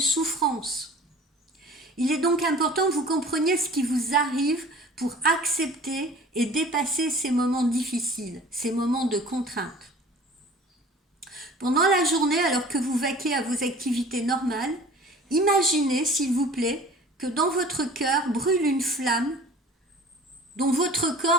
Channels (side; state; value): both; normal; correlation 0.45